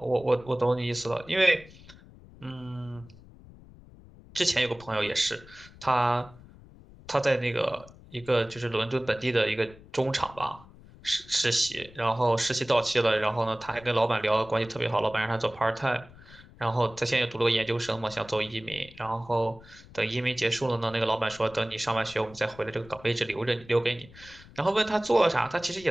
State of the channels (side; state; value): left; noise; rumble, 21 dB below the sound